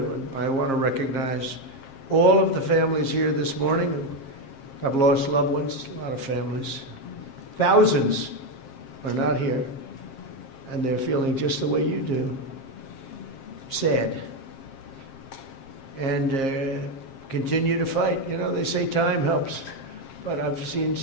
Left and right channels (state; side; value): late; right; 7.5 ms